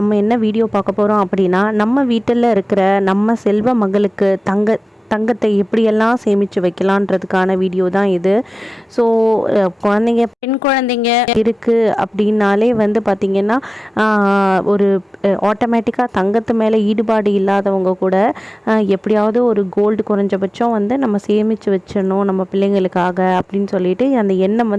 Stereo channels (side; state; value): both; normal; correlation 0.97